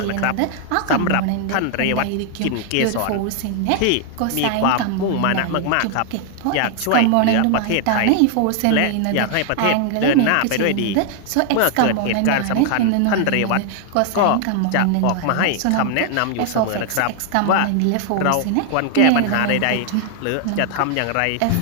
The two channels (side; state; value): both; different; correlation 0.00